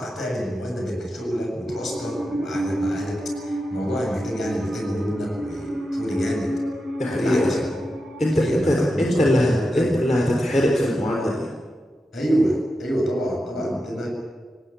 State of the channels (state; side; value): normal; both; correlation 0.89